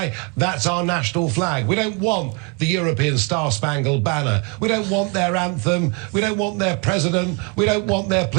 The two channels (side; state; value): left; quieter; 32.2 dB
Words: That's our national flag. We don't want the European Star-Spangled Banner. We don't want their anthem. We don't want their president. We don't want their